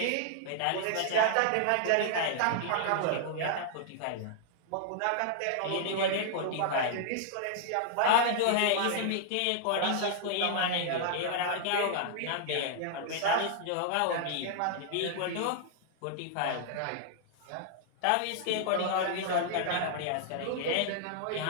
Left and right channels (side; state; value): both; different; correlation -0.01